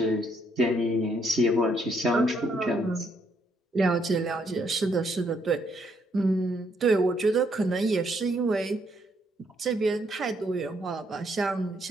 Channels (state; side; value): normal; both; correlation 0.72